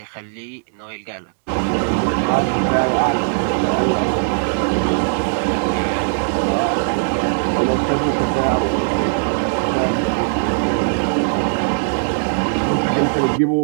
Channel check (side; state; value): left; silent; 64 dB below the other